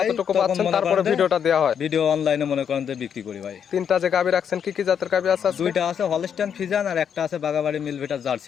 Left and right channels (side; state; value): right; quieter; 8.0 dB